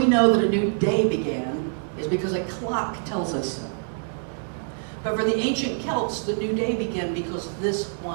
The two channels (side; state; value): left; silent; 58 dB below the other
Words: know that a new day began is because a clock tells us so. But for the ancient Celts, the new day began because this